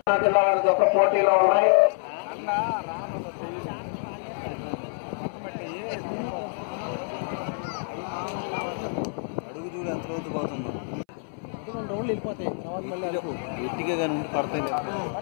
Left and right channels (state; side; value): silent; right; 60 dB below the other